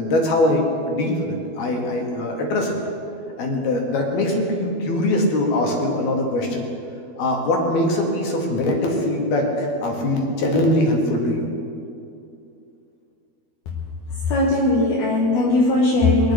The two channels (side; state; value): right; late; 12 ms